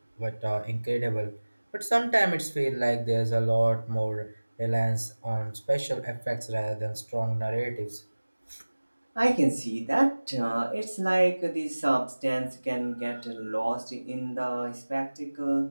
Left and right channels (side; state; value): both; inverted; correlation -1.00